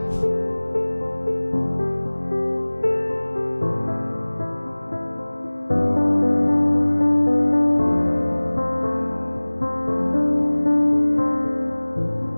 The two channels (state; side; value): inverted; both; correlation -1.00